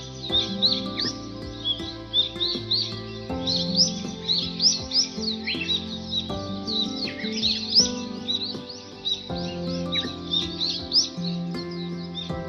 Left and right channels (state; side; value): identical; both; correlation 1.00